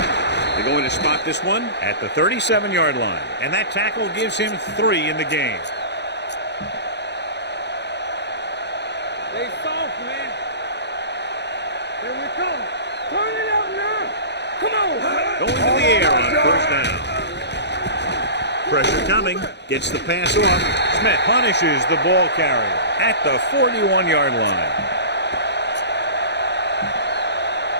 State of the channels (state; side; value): late; right; 0.50 ms